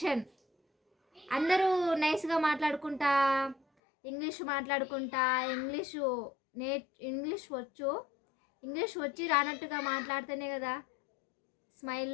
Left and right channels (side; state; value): right; drops out; at 3.6 s